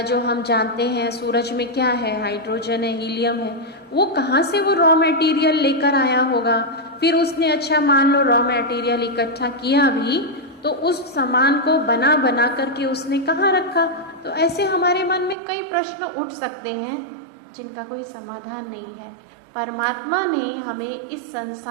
जो हम जानते हैं सूरज में क्या है, हाइड्रोजन है, हीलियम है, वो कहाँ से वो रॉ मटेरियल लेकर आया होगा? फिर उसने, अच्छा मान लो रॉ मटेरियल इकट्ठा किया भी, तो उस सामान को बना बना करके उसने कहाँ रखा? तो ऐसे हमारे मन में कई प्रश्न उठ सकते हैं जिनका कोई समाधान नहीं है। परमात्मा ने हमें इस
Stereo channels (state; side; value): drops out; left; at 15.4 s